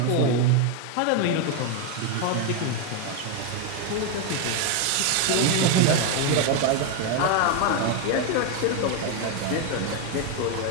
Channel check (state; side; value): different; both; correlation 0.01